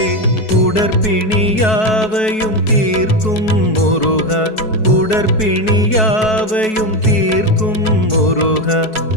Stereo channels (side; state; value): right; late; 4.6 ms